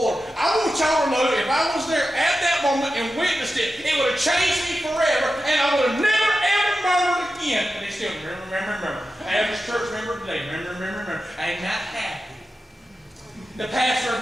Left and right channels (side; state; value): both; normal; correlation 0.92